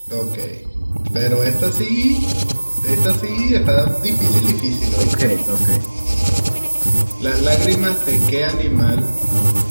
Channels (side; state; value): both; inverted; correlation -1.00